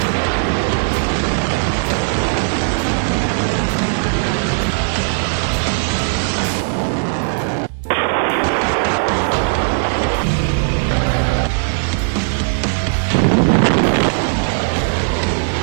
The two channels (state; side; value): silent; left; digital silence